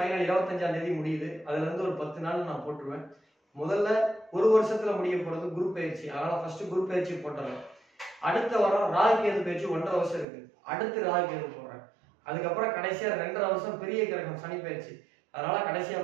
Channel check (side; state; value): left; drops out; at 10.2 s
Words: 25ஆம் தேதி முடியுது. அதுல இருந்து ஒரு 10 நாள் நான் போட்டுருவேன். முதல்ல ஒரு வருஷத்துல முடிய போறது குரு பயிற்சி, அதனால ஃபர்ஸ்ட் குரு பயிற்சி போட்டுறேன். அடுத்த வாரம் ராகு கேது பயிற்சி 1.5 வருஷம் இருக்கு, அடுத்து ராகு கேது போடுறேன். அதுக்கப்புறம் கடைசியா 2.5 வருஷம் பெரிய கிரகம் சனி பயிற்சி, அதனால கடைசியா